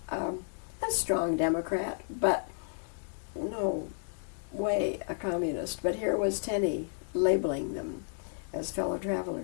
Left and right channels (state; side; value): silent; right; digital silence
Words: a strong Democrat, but no way a communist. But here was Tenney labeling them as fellow